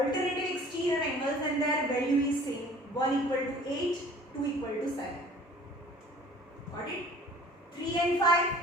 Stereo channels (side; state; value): both; normal; correlation 0.49